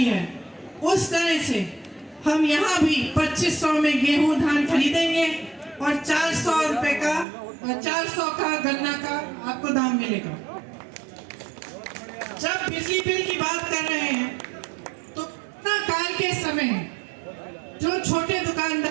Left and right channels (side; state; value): left; drops out; at 7.2 s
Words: है, उस तरह से हम यहाँ भी 2500 में गेहूं धान खरीदेंगे और 400 रुपए का 400 का गन्ना का आपको दाम मिलेगा। जब बिजली बिल की बात कर रहे हैं तो कोरोना काल के समय जो छोटे